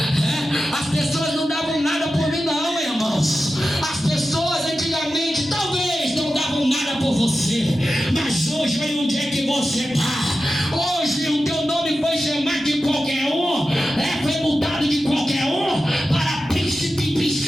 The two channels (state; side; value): normal; both; correlation 0.92